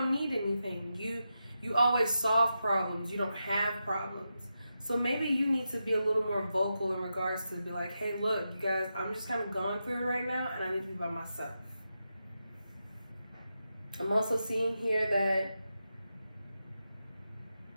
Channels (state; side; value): inverted; both; correlation -0.88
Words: need anything. You always solve problems. You don't have problems. So maybe you need to be a little more vocal in regards to be like, hey, look, you guys, I'm just kind of going through it right now, and I need to be by myself. I'm also seeing here that